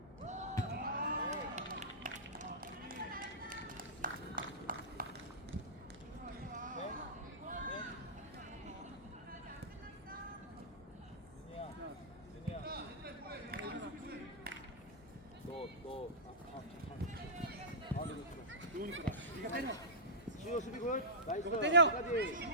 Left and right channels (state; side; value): normal; both; correlation -0.18